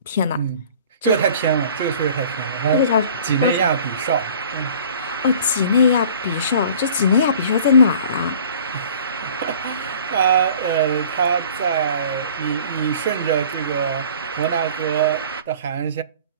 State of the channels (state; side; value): inverted; both; correlation -0.48